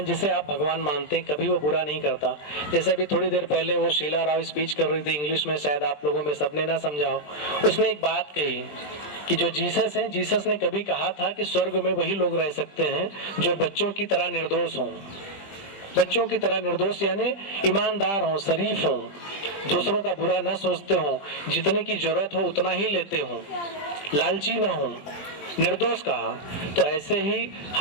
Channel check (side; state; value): right; late; 20 ms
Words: जिसे आप भगवान मानते हैं कभी वो बुरा नहीं करता। जैसे अभी थोड़ी देर पहले वो शीला राव स्पीच कर रही थी इंग्लिश में, शायद आप लोगों में सबने ना समझा हो। उसने एक बात कही कि जो जीसस है, जीसस ने कभी कहा था कि स्वर्ग में वही लोग रह सकते हैं जो बच्चों की तरह निर्दोष हों। बच्चों की तरह निर्दोष यानी ईमानदार हों, शरीफ हों, दूसरों का बुरा न सोचते हों, जितने की जरूरत हो उतना ही लेते हों, लालची ना हों, निर्दोष कहा। तो ऐसे ही